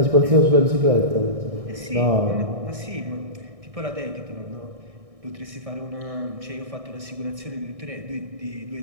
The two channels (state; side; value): late; left; 1.6 ms